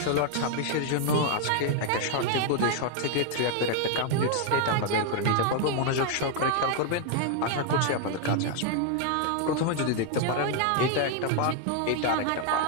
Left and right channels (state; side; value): different; both; correlation 0.00